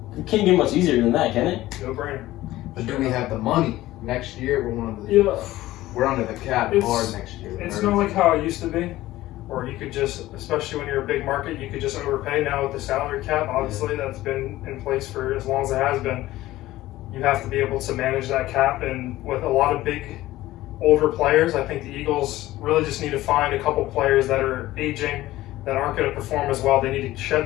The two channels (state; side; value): quieter; right; 16.2 dB